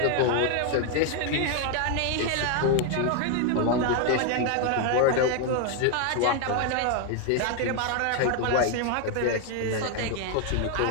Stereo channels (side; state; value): both; different; correlation 0.01